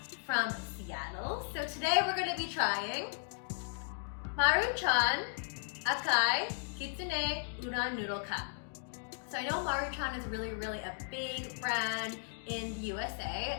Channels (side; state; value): right; silent; digital silence